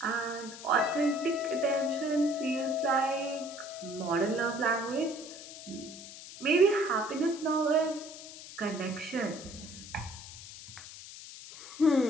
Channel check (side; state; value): left; noise; hiss, 14 dB below the sound